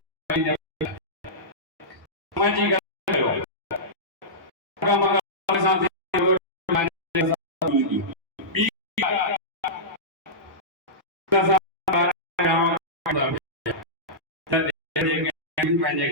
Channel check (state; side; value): normal; both; correlation -0.15